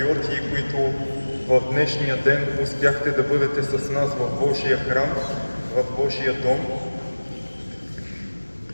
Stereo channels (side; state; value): both; inverted; correlation -1.00